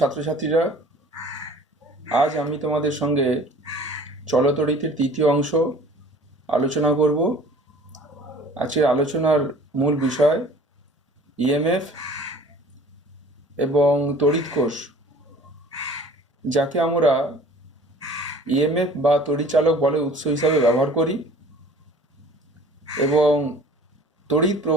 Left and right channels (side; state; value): both; normal; correlation 0.48